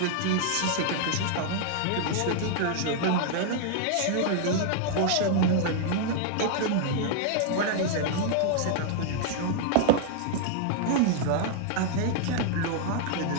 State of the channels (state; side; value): different; both; correlation 0.00